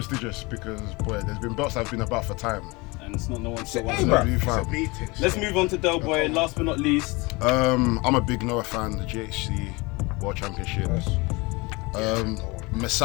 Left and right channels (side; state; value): right; quieter; 25.2 dB